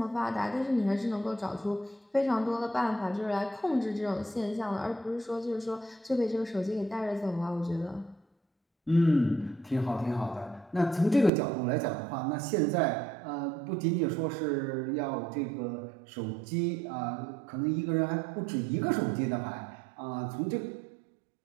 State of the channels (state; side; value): drops out; left; at 11.3 s